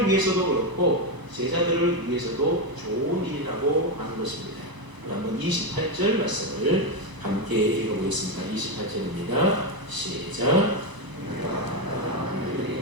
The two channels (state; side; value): late; left; 1.0 ms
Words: 위해서도 그렇고 제자들을 위해서도 좋은 일이라고 하는 것입니다. 한번 28절 말씀을 함께 읽어보겠습니다. 28절입니다. 시작.